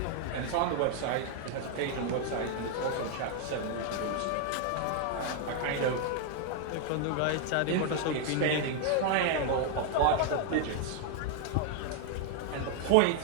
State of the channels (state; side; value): different; both; correlation 0.00